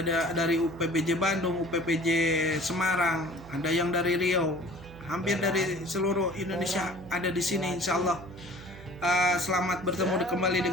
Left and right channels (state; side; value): noise; right; hum, 17 dB below the sound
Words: dari UPPJ Bandung, UPPJ Semarang, ada yang dari Riau, hampir dari seluruh Indonesia ada di sini insya Allah. Selamat bertemu kembali